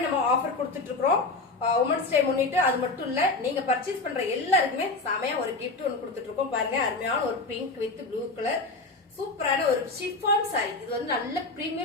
நம்ம ஆஃபர் கொடுத்துட்டு இருக்கிறோம் உமன்ஸ் டே முன்னிட்டு. அது மட்டும் இல்ல, நீங்க பர்ச்சேஸ் பண்ற எல்லாருக்குமே செமையா ஒரு கிஃப்ட் ஒன்று கொடுத்துட்டு இருக்கோம். பாருங்க, அருமையான ஒரு பிங்க் வித் ப்ளூ கலர் சூப்பரான ஒரு ஷிஃபான் சாரி. இது வந்து நல்ல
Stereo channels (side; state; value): right; quieter; 3.5 dB